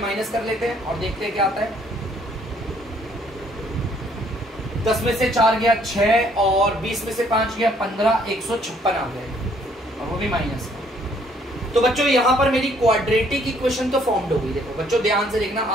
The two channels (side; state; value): both; normal; correlation 0.64